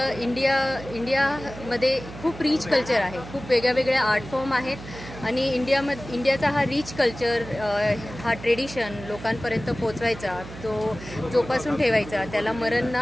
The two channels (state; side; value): noise; right; hum, 14 dB below the sound